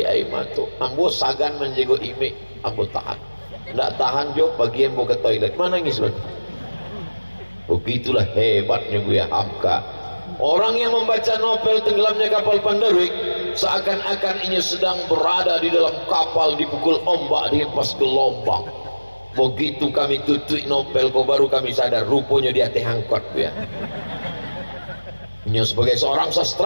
air mata. Ambo sagan menjaga imik, ambo tahan. Tidak tahan jo bagian mau ke toilet, manangis betul. Begitulah hebatnya Buya Hamka. Orang yang membaca novel Tenggelamnya Kapal Panderwik seakan-akan ia sedang berada di dalam kapal dipukul ombak, dihempas gelombang. Begitu kami tutup novel, kok baru kami sadar rupanya dia teh angkot ya. Ia sebagai seorang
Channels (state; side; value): inverted; both; correlation -1.00